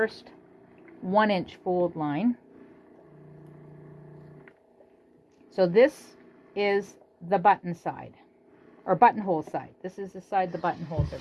1 inch fold line. So this is the button side, or buttonhole side. This is the side the buttonholes are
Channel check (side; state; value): both; identical; correlation 1.00